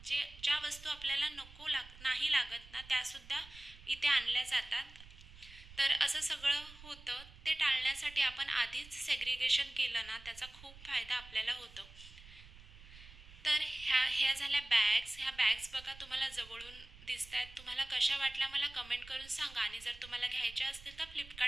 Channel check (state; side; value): noise; right; rumble, 19 dB below the sound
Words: ज्या वस्तू आपल्याला नाही लागत ना त्यासुद्धा इथे आणल्या जातात. तर असं सगळं होतं. ते टाळण्यासाठी आपण आधीच सेग्रिगेशन केलं ना त्याचा खूप फायदा आपल्याला होतो. तर ह्या झाल्या बॅग्स. ह्या बॅग्स बघा तुम्हाला जवळून दिसत आहेत. तुम्हाला कशा वाटल्या मला कमेंट करून सांगा आणि जर तुम्हाला घ्यायच्या असतील तर